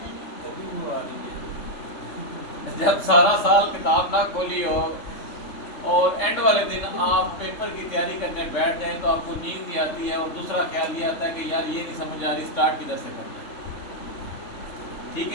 जब सारा साल किताब ना खोली हो और एंड वाले दिन आप पेपर की तैयारी करने बैठ जाएं तो आपको नींद ही आती है, और दूसरा ख्याल ये आता है कि यार ये नहीं समझ आ रही स्टार्ट किधर से करना है, ठीक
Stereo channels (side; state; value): right; late; 3.5 ms